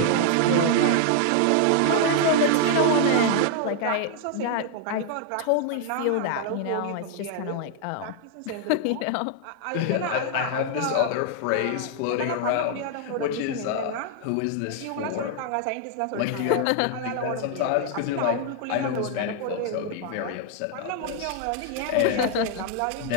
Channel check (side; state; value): both; different; correlation 0.00